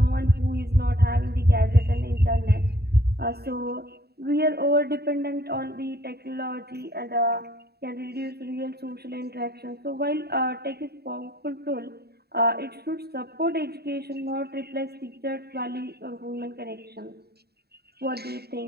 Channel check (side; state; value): left; late; 0.47 ms